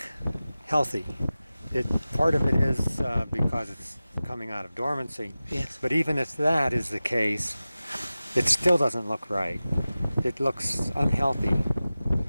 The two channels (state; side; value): inverted; both; correlation -0.96